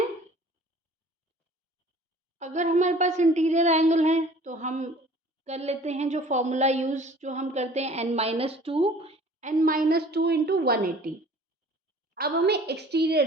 अगर हमारे पास इंटीरियर एंगल है तो हम कर लेते हैं जो फॉर्मूला यूज जो हम करते हैं n माइनस टू इंटू 180। अब हमें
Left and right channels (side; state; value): both; normal; correlation 0.49